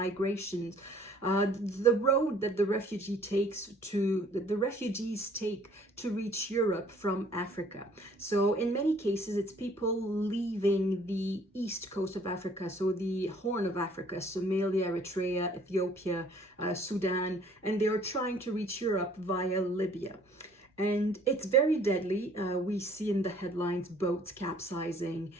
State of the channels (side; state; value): both; normal; correlation 0.57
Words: the road that the refugees take to reach Europe from Africa. So in many cases, it's people leaving the east coast of Africa, so the Horn of Africa, Somalia, Eritrea, Ethiopia, Sudan, and they are trying to reach Europe via Libya. And it's very deadly. We see in the headlines boats capsizing,